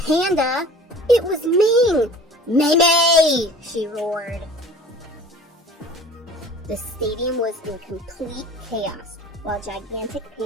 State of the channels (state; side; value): normal; both; correlation 0.45